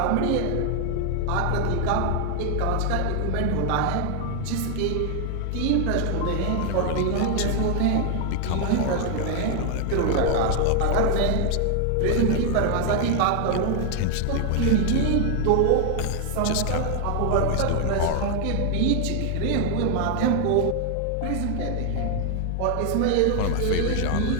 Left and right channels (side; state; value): both; different; correlation 0.00